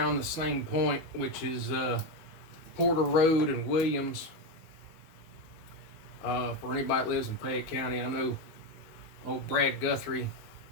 the same point, which is Porter Road and Williams. For anybody that lives in Fayette County, I know old Brad Guthrie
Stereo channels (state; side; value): late; right; 19 ms